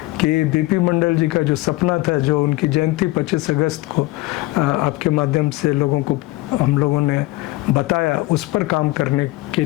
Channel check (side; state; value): right; quieter; 20.0 dB